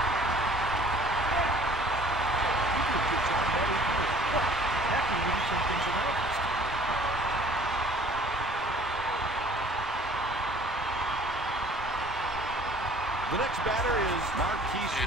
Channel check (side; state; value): both; normal; correlation 0.52